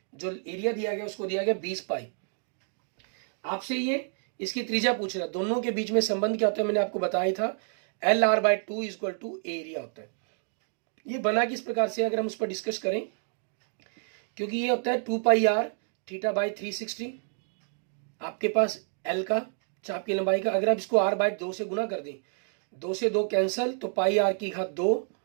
जो एरिया दिया गया उसको दिया गया 20 पाई। आपसे ये इसकी त्रिज्या पूछ रहा है, दोनों के बीच में संबंध क्या होता है मैंने आपको बताया था, LR/2 = एरिया होता है। ये बना किस प्रकार से अगर हम उस पर डिस्कस करें, क्योंकि ये होता है 2πr θ/360 आपके पास L का चाप की लंबाई का, अगर आप इसको R/2 से गुना कर दें, 2 से 2 कैंसल, तो πr²2,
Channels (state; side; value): silent; left; 59 dB below the other